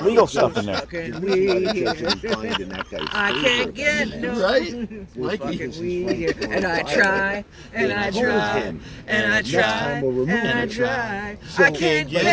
legal stuff in there. Fucking I can't get no Right? Mikey. fucking weed here. And I try, and I try, and I try, and I try. I can't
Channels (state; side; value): identical; both; correlation 1.00